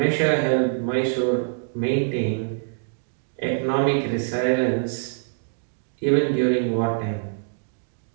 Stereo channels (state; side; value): silent; left; 60 dB below the other